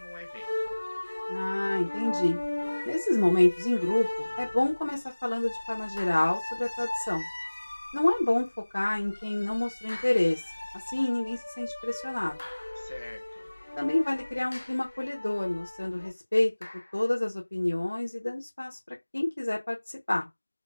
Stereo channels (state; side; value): inverted; both; correlation -1.00